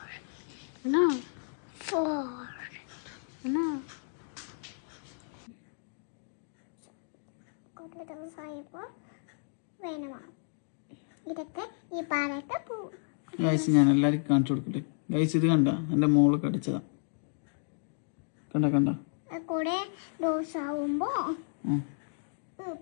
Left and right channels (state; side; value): silent; right; digital silence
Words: ആണോ? ആണോ? കുറേ ദിവസമായപ്പോൾ വേണമാണ് ഇതൊക്കെ ഈ പാലൊക്കെ പോവും. ഗൈസ് ഞാൻ എല്ലാവർക്കും കാണിച്ചു കൊടുക്കട്ടെ. ഗൈസ് ഇത് കണ്ട എൻ്റെ മോള് കടിച്ചതാ. കണ്ട കണ്ട കൂടെ ഡോസ് ആവുമ്പോൾ